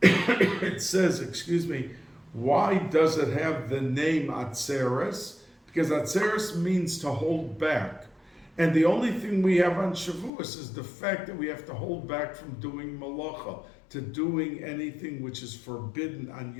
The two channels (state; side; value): drops out; right; at 10.3 s